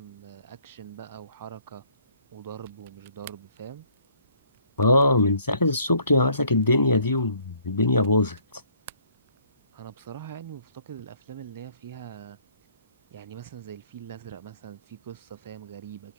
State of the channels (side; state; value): both; inverted; correlation -0.61